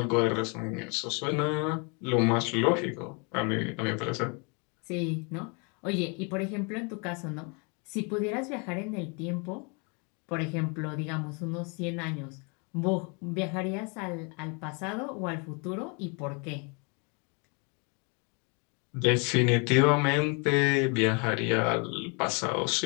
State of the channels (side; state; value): right; quieter; 33.5 dB